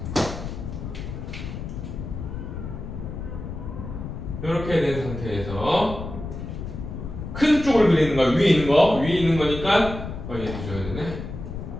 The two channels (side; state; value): left; noise; rumble, 8 dB below the sound